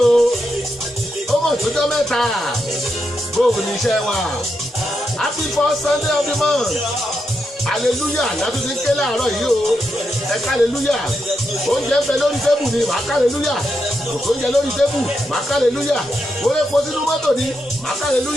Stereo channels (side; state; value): both; normal; correlation 0.84